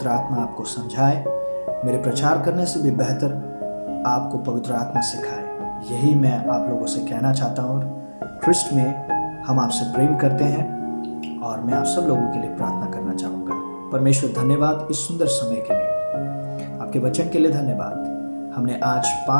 आत्मा आपको समझाए, मेरे प्रचार करने से भी बेहतर आपको पवित्र आत्मा सिखाए। यही मैं आप लोगों से कहना चाहता हूँ। ख्रिस्ट में हम आपसे प्रेम करते हैं, और मैं आप सब लोगों के लिए प्रार्थना करना चाहूँगा। परमेश्वर, धन्यवाद इस सुंदर समय के लिए, आपके वचन के लिए धन्यवाद। हमने आज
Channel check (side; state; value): both; inverted; correlation -1.00